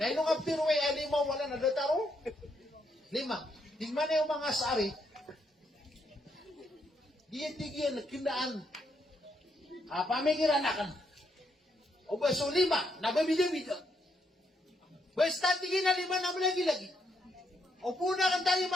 Na ilo nga piruway, limaw, wala na dataro. Lima. Tingnan na yung mga sari, diyan kinaan, pamikiran na kan. O ba, so lima, nababida-bida. Basta tingin na lima na lagi-lagi. O puna kan tayo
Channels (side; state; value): both; normal; correlation 0.77